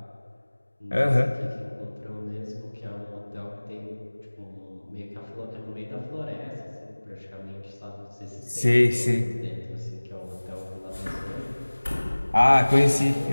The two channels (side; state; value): both; inverted; correlation -1.00